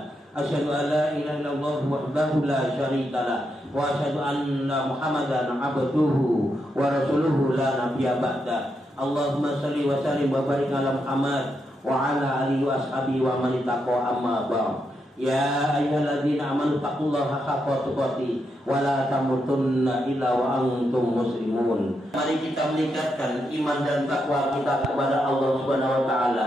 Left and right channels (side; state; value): both; normal; correlation 0.83